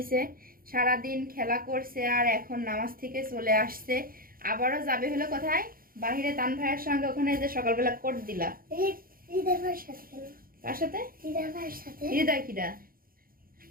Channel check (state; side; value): late; left; 0.42 ms